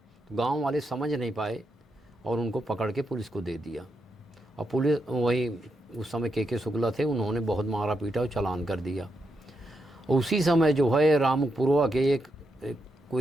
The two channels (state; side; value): normal; both; correlation 0.83